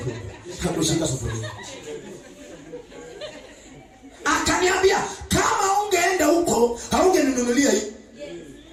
Hakushika sufuria. Akaniambia kama ungeenda huko haungeninunulia hii.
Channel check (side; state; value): both; identical; correlation 1.00